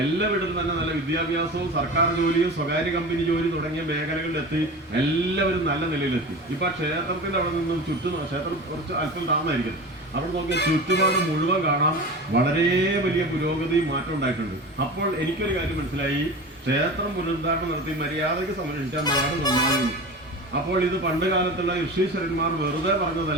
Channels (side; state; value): both; normal; correlation 0.32